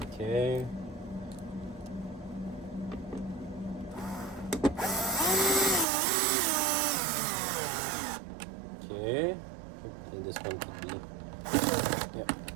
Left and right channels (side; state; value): left; drops out; at 5.9 s